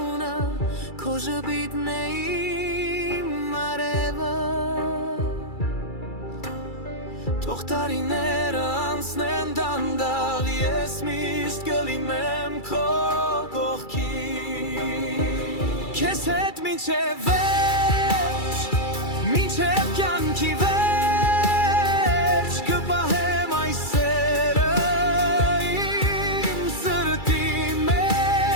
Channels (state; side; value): late; right; 2.3 ms